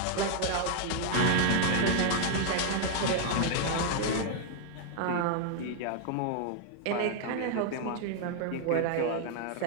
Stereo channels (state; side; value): different; both; correlation 0.00